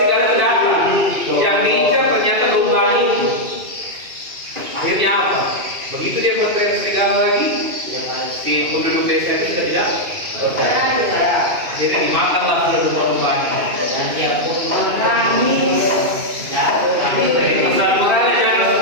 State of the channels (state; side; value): late; left; 2.6 ms